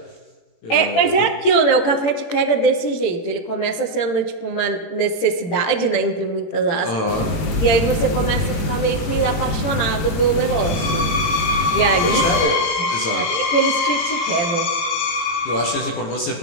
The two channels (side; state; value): right; late; 18 ms